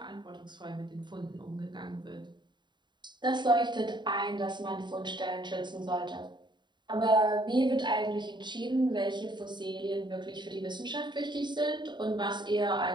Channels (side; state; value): left; late; 0.22 ms